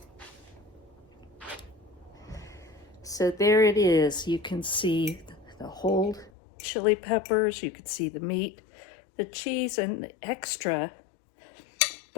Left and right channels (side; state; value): right; drops out; at 6.3 s